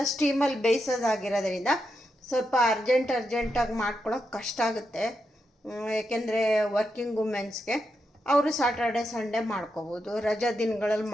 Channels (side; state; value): both; normal; correlation 0.85